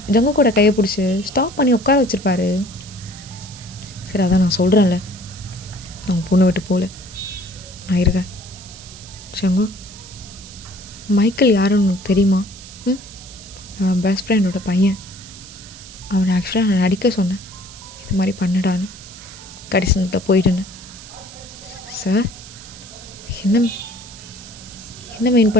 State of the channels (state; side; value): noise; right; hiss, 17 dB below the sound